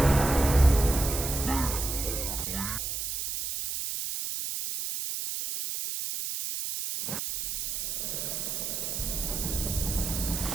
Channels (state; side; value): noise; right; hiss, 3 dB below the sound